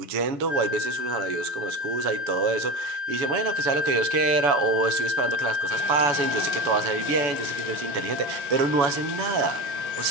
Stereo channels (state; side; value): late; left; 7.0 ms